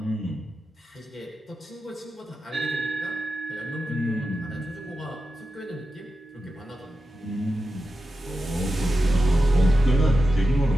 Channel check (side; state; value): both; normal; correlation 0.91